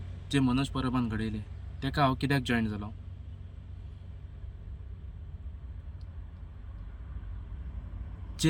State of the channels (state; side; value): identical; both; correlation 1.00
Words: जे मनोज परबान घडयले तेका हांव कित्याक जॉयन जालो.